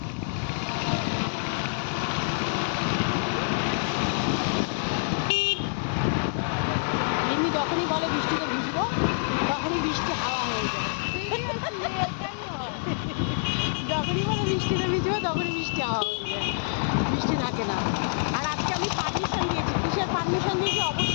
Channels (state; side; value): silent; right; digital silence